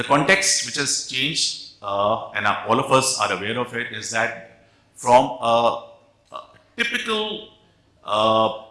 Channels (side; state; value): both; identical; correlation 1.00